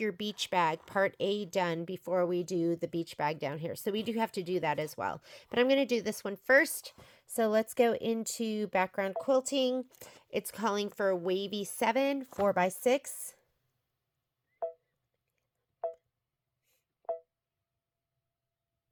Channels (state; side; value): identical; both; correlation 1.00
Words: beach bag, part A, done before we do the beach bag down here. So we do have to do that as well. But I'm going to do this one first. So let's go into background quilting. It's calling for wavy 7, 4x6.